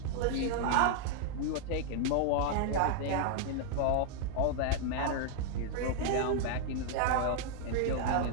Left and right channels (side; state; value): both; different; correlation 0.00